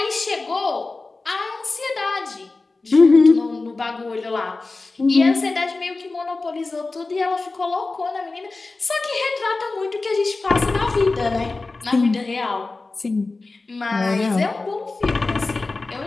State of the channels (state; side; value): quieter; right; 3.5 dB